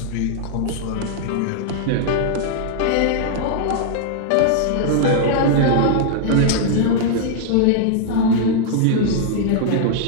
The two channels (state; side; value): different; both; correlation -0.01